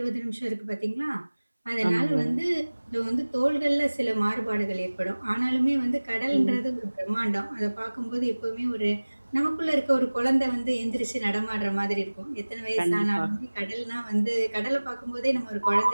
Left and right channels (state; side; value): inverted; both; correlation -1.00